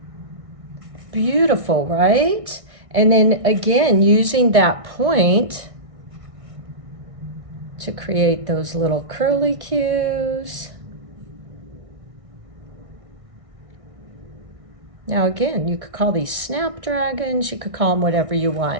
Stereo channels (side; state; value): left; late; 1.6 ms